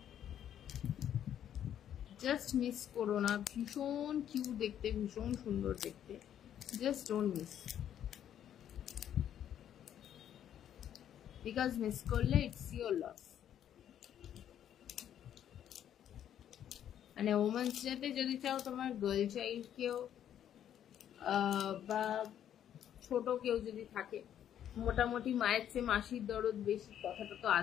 জাস্ট মিস করো না, ভীষণ কিউট দেখতে, ভীষণ সুন্দর দেখতে, just don't miss, because miss করলে ইটস ইয়োর লস। মানে ওমেন্স ডেতে যদি চাও তোমার গার্ল চাইল্ড কেউ বা ছোট কেউ যদি থাকে, মোটামুটি মায়ের চেয়ে মাসির দরদ বেশি কথাটা তো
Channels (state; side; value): quieter; right; 10.2 dB